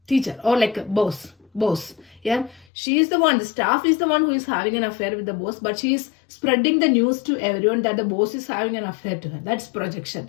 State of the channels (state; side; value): drops out; right; at 2.7 s